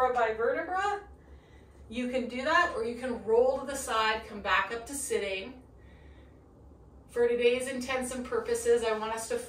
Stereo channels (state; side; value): identical; both; correlation 1.00